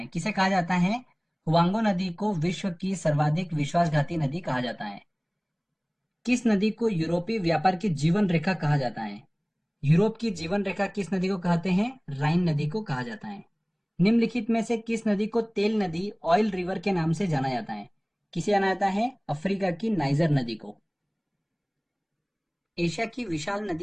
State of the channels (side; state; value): both; identical; correlation 1.00